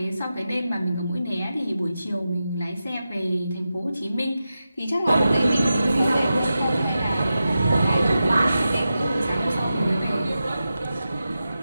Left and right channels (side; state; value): both; inverted; correlation -0.91